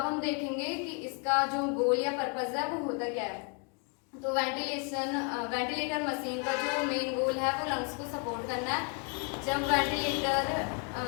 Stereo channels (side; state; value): right; quieter; 37.2 dB